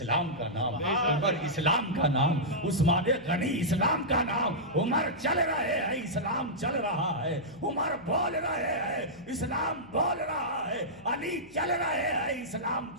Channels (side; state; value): left; noise; hum, 26 dB below the sound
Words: کا نام، عمر اسلام کا نام، عثمان غنی اسلام کا نام، عمر چل رہے ہیں اسلام چل رہا ہے، عمر بول رہے ہیں اسلام بول رہا ہے، علی چل رہے ہیں اسلام